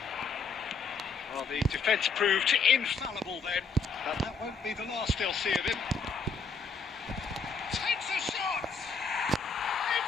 Well, the defence proved infallible then, but that won't be the last they'll see of him. Takes a shot!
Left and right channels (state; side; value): quieter; right; 4.7 dB